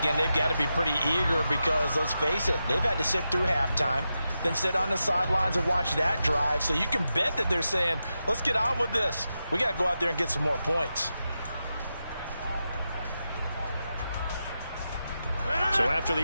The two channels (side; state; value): both; inverted; correlation -0.89